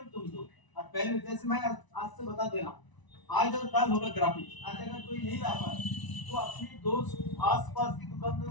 तुम दो। और पहले जैसे मैं आज से बता दे रहा हूँ, आज और कल होगा ग्राफिक्स। आज अगर कोई नहीं ला पाए तो अपनी दोस्त आसपास की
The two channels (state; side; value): late; right; 1.0 ms